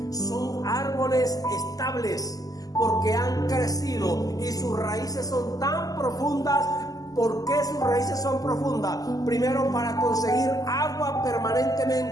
porque han crecido y sus raíces son tan profundas. ¿Por qué sus raíces son profundas? Primero, para conseguir agua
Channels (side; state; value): right; late; 0.17 ms